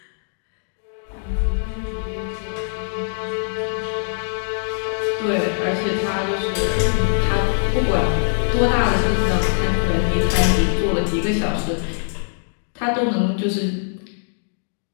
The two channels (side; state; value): right; silent; digital silence